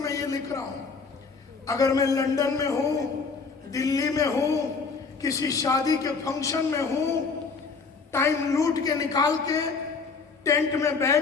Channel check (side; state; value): right; quieter; 4.8 dB